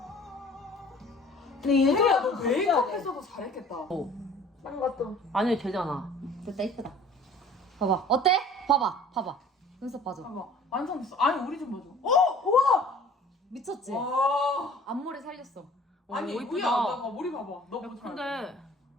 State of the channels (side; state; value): both; normal; correlation 0.49